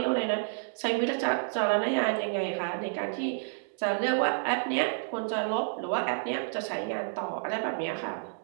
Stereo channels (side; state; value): left; silent; 58 dB below the other